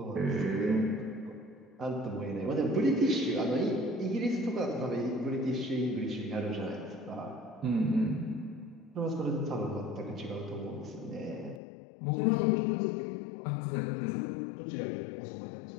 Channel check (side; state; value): right; drops out; at 11.6 s